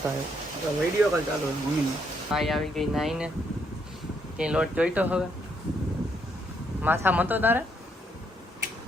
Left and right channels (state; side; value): normal; both; correlation 0.73